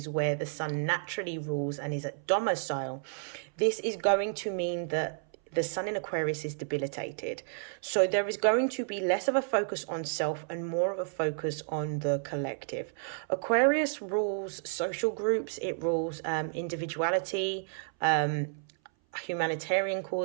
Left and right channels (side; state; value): left; silent; 57 dB below the other